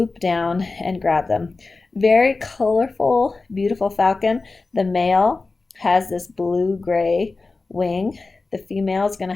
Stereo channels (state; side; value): quieter; right; 3.7 dB